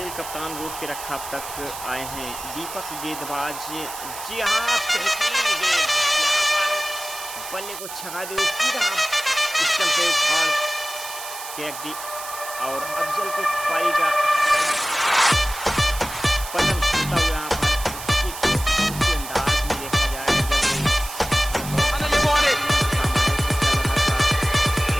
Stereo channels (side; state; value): right; noise; hiss, 11 dB below the sound